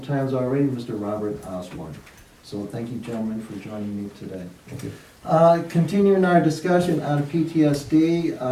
times already, Mr. Robert Osborne. So thank you, gentlemen, for joining me today. Thank you. Continuing our discussion on PTSD,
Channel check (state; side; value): identical; both; correlation 1.00